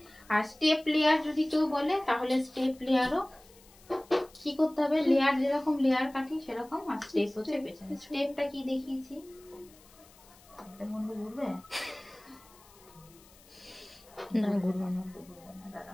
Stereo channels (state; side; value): noise; left; hiss, 25 dB below the sound